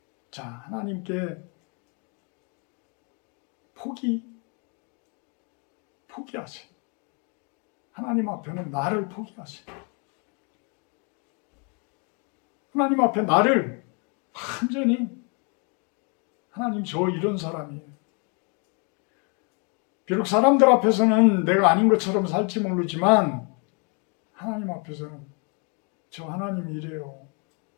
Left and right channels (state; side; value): quieter; right; 36.1 dB